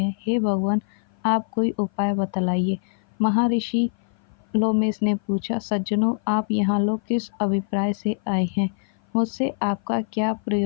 हे भगवान, आप कोई उपाय बतलाइए। महर्षि लोमेश ने पूछा, सज्जनों, आप यहाँ लोग किस अभिप्राय से आए हैं? मुझसे आपका क्या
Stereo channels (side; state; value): right; silent; 56 dB below the other